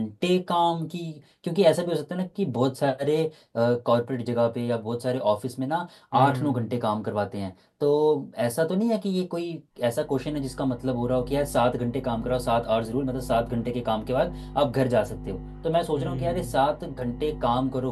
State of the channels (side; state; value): both; identical; correlation 1.00